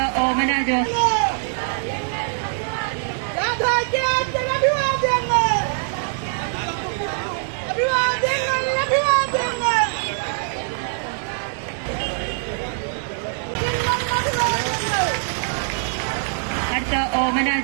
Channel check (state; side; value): silent; left; 64 dB below the other